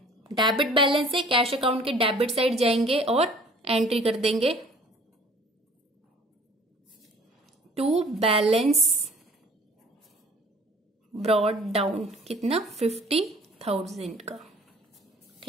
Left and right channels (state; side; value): normal; both; correlation 0.52